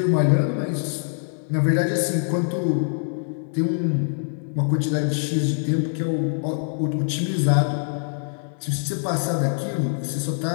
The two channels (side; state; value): right; silent; 57 dB below the other